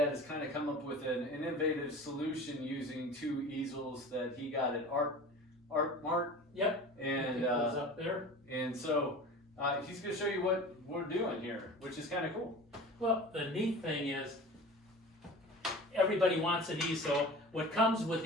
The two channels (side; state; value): both; normal; correlation 0.38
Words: has kind of come up with an innovative solution using two easels that he got at Art Mart. Yep. And up there. And so he's going to show you what we're doing here, which is kind of cool. Well, the neat thing is everybody wants an easel. What comes with